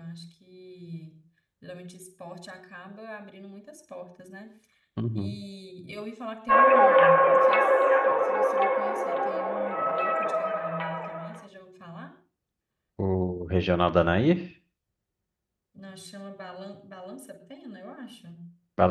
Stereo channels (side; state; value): both; identical; correlation 1.00